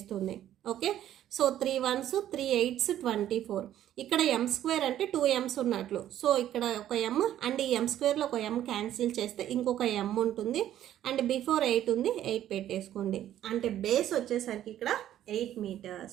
ఓకే. So 3 1s 3 8s 24. ఇక్కడ ఎం స్క్వేర్ అంటే 2 m's ఉన్నట్లు. సో ఇక్కడ ఒక ఎమ్ అండ్ ఈ ఎం స్క్వేర్లో ఒక ఎమ్ క్యాన్సిల్ చేస్తే ఇంకొక ఎమ్ ఉంటుంది. అండ్ బిఫోర్ 8 ఉంది, 8 పెట్టేసుకోండి. అంటే బేస్ వచ్చేసరికి ఇక్కడ 8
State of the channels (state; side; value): quieter; left; 11.9 dB